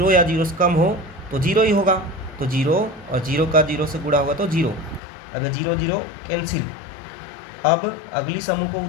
या 0 से कम हो तो 0 ही होगा। तो 0 और 0 का 0 से गुणा होगा तो 0। अब ये 0 0 कैंसिल। अब अगली समूह को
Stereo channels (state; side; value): drops out; right; at 5.0 s